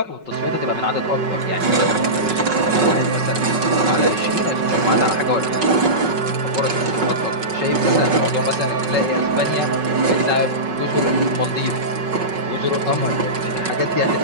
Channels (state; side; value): late; left; 5.4 ms